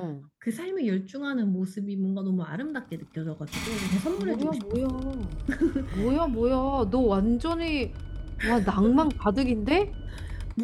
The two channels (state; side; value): identical; both; correlation 1.00